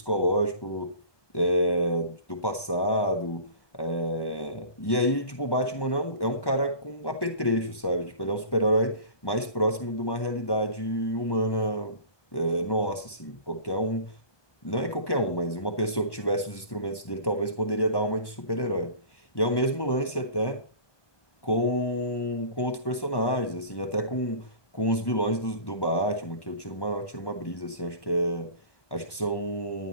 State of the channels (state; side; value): late; right; 1.1 ms